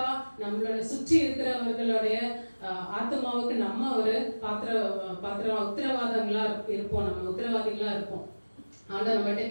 நம்மளோட சுற்றி இருக்கிறவர்களுடைய ஆத்மாவுக்கு நம்ம ஒரு உத்தரவாதங்களா இருப்போம், நம்ம உத்தரவாதிகளா இருப்போம். ஆண்டவர் நம்மகிட்ட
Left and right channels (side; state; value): both; inverted; correlation -1.00